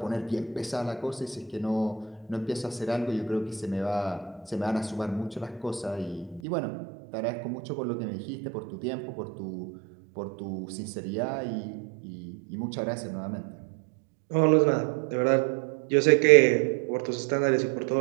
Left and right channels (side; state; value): left; drops out; at 6.4 s